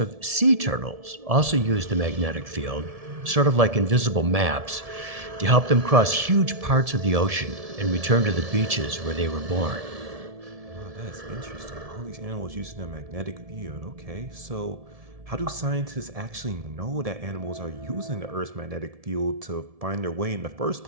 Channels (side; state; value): left; late; 1.7 ms